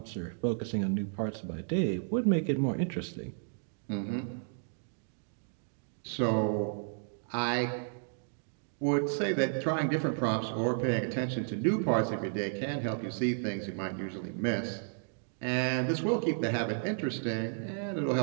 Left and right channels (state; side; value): silent; left; digital silence